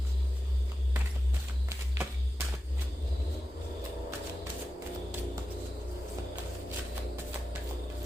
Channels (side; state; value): both; normal; correlation 0.93